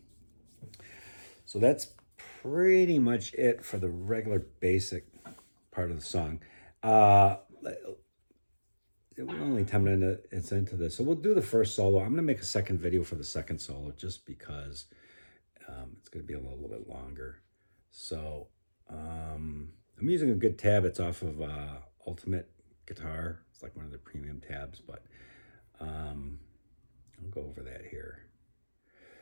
So that's pretty much it for the regular basic part of the song. We're only 10 minutes into this. So we'll do the first solo. I'm going to make a second video for the second solo just because it's going to be a little bit longer. So I'm using a good tab. It's off of Ultimate Guitar. It's like one of the premium tabs, but I'll go over that here.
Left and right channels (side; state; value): both; inverted; correlation -1.00